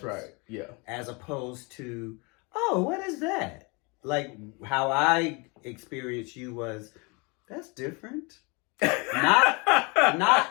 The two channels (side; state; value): right; quieter; 29.6 dB